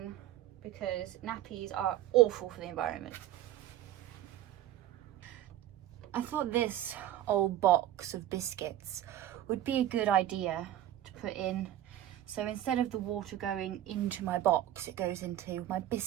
because nappies are awful for the environment. I thought this old box of biscuits would be a good idea to put in. So instead of the water going into my box, it goes into my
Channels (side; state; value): left; quieter; 12.5 dB